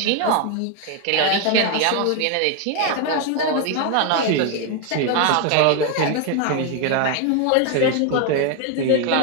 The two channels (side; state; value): both; different; correlation 0.01